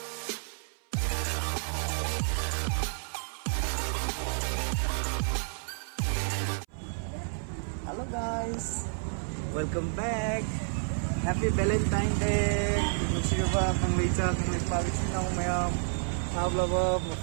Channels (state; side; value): silent; left; 58 dB below the other